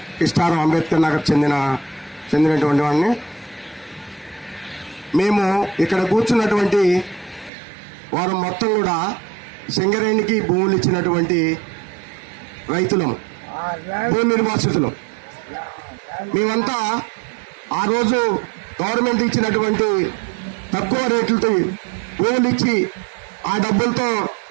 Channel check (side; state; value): left; drops out; at 7.5 s